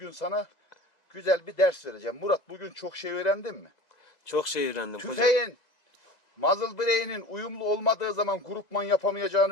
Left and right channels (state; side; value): late; right; 2.0 ms